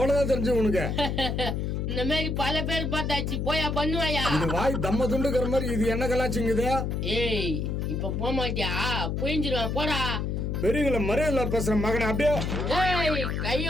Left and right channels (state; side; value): noise; left; hum, 1 dB below the sound